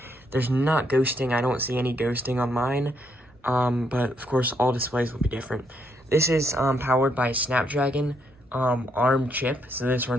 There's not ghosting. I don't see any ghosting on mine, but of course all displays will be different. This is powered by a Snapdragon ARM chip, so this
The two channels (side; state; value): both; normal; correlation 0.75